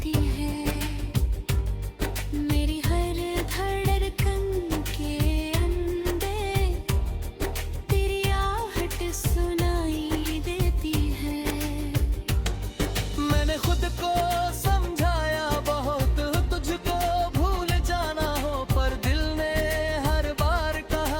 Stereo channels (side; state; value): both; identical; correlation 1.00